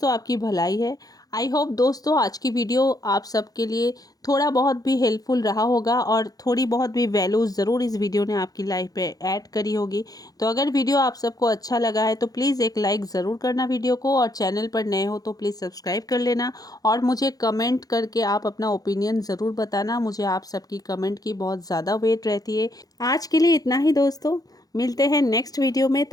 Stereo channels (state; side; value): late; right; 0.18 ms